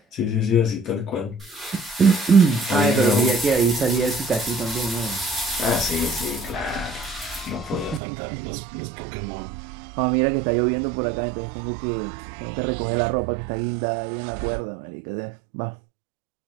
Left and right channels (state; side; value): drops out; left; at 8.0 s